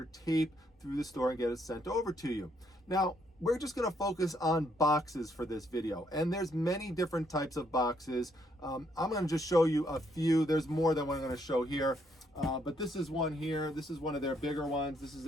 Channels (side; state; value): both; normal; correlation 0.72